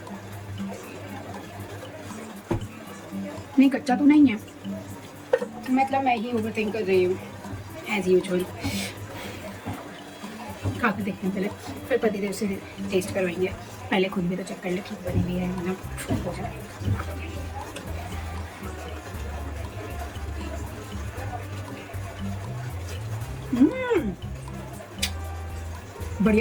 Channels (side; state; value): both; identical; correlation 1.00